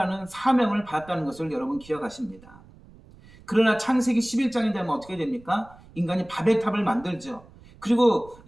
사명을 받았다는 것을 여러분 기억하십니다. 그러나 창세기 11장이 되면 어떻게 됩니까? 인간이 바벨탑을 만들죠. 그리고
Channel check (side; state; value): right; noise; rumble, 23 dB below the sound